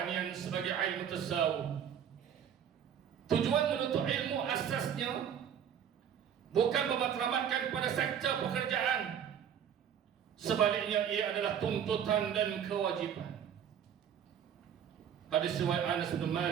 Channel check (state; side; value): quieter; left; 8.7 dB